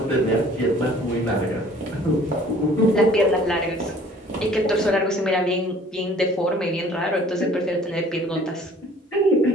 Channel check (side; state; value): both; normal; correlation 0.53